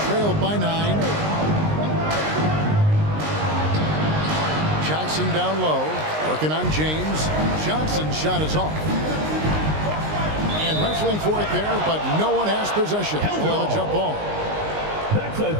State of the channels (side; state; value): left; late; 19 ms